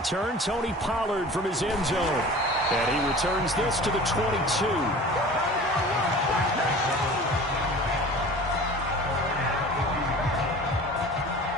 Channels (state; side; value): normal; both; correlation 0.41